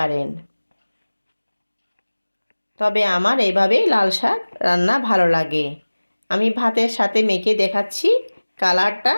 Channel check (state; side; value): inverted; both; correlation -1.00